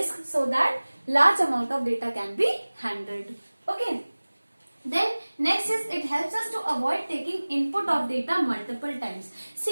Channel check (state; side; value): inverted; both; correlation -1.00